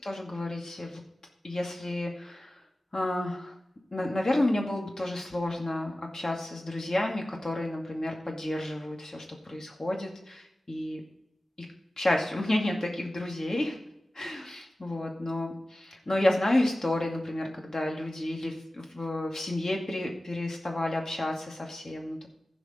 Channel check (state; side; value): normal; both; correlation 0.96